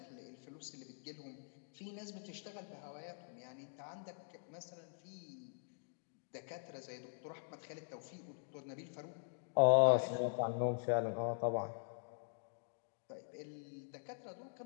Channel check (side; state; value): right; silent; digital silence